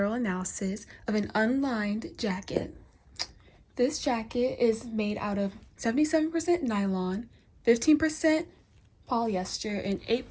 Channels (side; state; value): both; identical; correlation 1.00